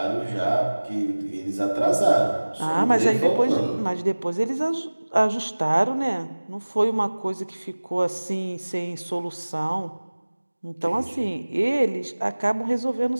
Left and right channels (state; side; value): inverted; both; correlation -1.00